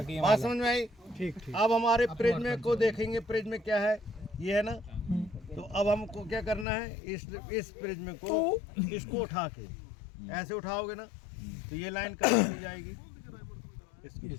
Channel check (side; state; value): right; drops out; at 6.7 s